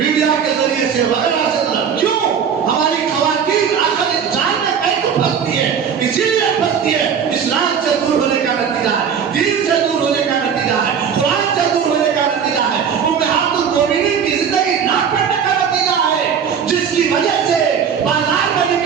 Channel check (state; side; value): quieter; left; 7.4 dB